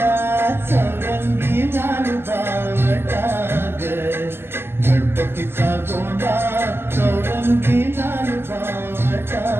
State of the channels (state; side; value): late; left; 0.11 ms